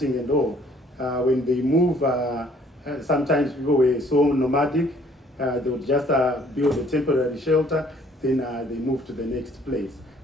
and all, when they move, sometimes people were so nomadic, they would just build a temporary shelter, then they move to the next place.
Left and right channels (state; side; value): normal; both; correlation 0.60